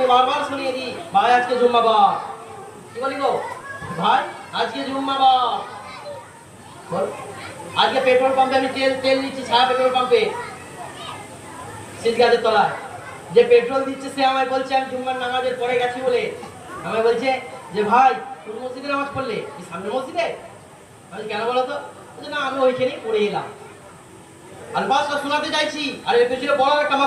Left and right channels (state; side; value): identical; both; correlation 1.00